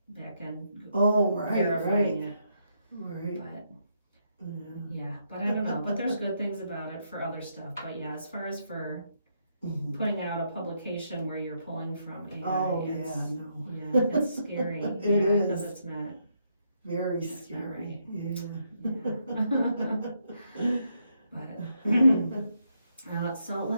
back end verifying it. Right. But I don't know. But there's good things about it for other stuff. But as far as for putting out a publication where you're pulling from AI, it's scary. It is. Because it's not very scary. But so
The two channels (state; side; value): inverted; both; correlation -0.77